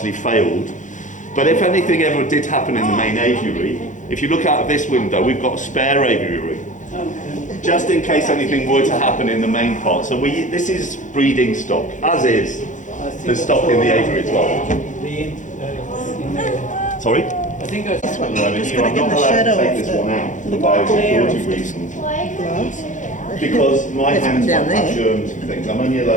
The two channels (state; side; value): late; right; 0.36 ms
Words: failed. But if anything ever did happen in the main aviary, if you look out of this window, we've got a spare aviary, just in case anything were to happen in the main part. So this is breeding stock, as is the stock in the aviary as well. Sorry? I think I This one, No, I'm just here, going I'm to not get the allowed to shadow take off this one out for the glare biosecurity of reasons. gloves. Because my There's one hands down might have there. germs and things. I'm only